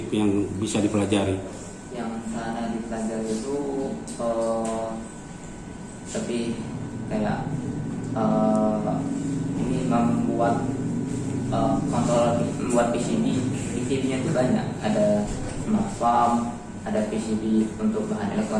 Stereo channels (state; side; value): identical; both; correlation 1.00